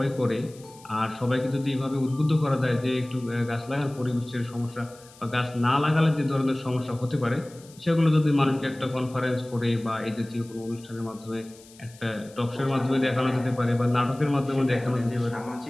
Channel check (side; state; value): left; noise; hiss, 24 dB below the sound